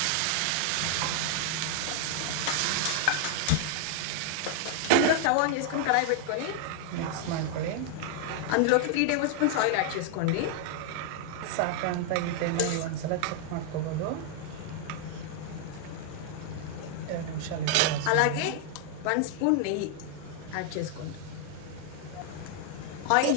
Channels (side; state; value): both; different; correlation 0.00